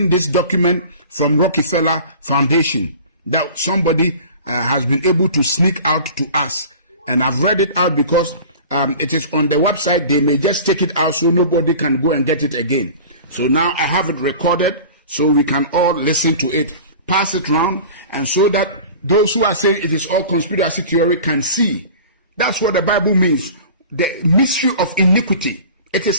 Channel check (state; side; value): inverted; both; correlation -0.40